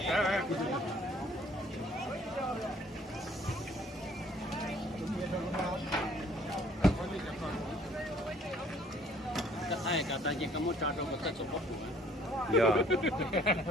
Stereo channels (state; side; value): normal; both; correlation 0.58